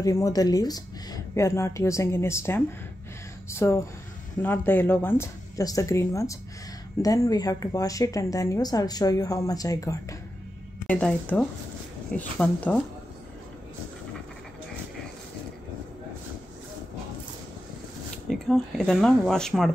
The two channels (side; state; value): both; normal; correlation 0.89